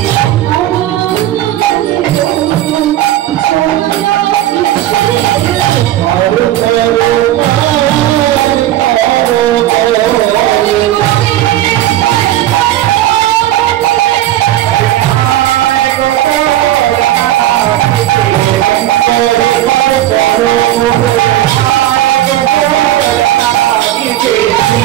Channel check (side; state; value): left; quieter; 13.6 dB